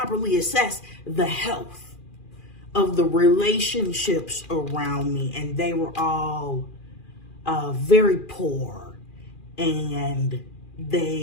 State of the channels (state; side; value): late; right; 2.4 ms